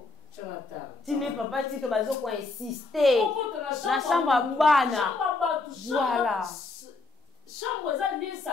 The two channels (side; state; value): right; quieter; 3.6 dB